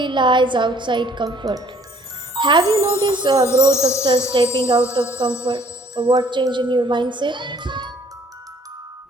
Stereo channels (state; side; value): normal; both; correlation 0.59